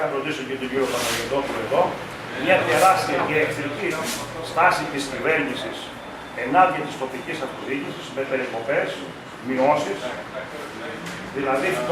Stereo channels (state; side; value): identical; both; correlation 1.00